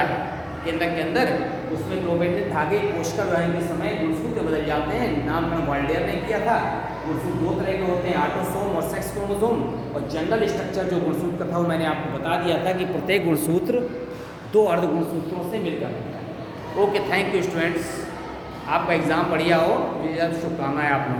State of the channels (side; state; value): both; identical; correlation 1.00